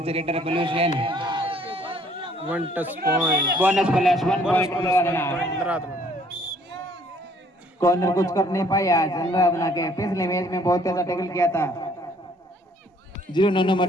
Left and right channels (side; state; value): both; normal; correlation 0.61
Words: raider Balveer Sen 1 touch point. Bonus plus 1 bonus point plus Anuradhana. Corner कुछ कर नहीं पाया आज अनुराधना के। पिछले मैच में बहुत अच्छा टैकल किया था 09 नंबर